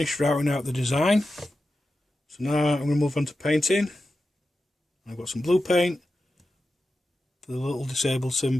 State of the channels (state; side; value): normal; both; correlation 0.91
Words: routing out the design, so now I'm going to move on to painting. I've got some blue paint for the little disabled